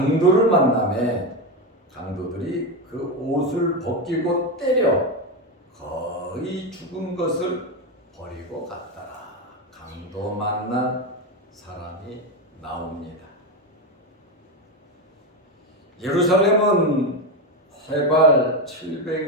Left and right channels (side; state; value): both; normal; correlation 0.13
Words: 만나매 강도들이 그 옷을 벗기고 때려 거의 죽은 것을 버리고 갔더라. 강도 만난 사람이 나옵니다. 예루살렘은 해발